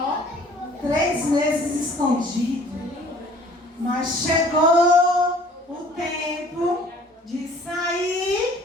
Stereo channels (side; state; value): both; normal; correlation 0.52